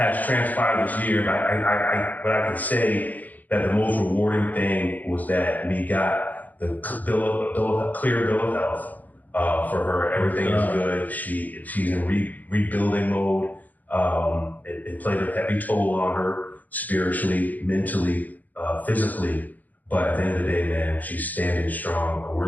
transpired this year. But I can say that the most rewarding thing was that we got the clear bill of health for her. Everything is good. She's in rebuilding mode. It played a heavy toll on her spiritually, mentally, physically. But at the end of the day, man, she's standing strong. We're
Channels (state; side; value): late; right; 0.081 ms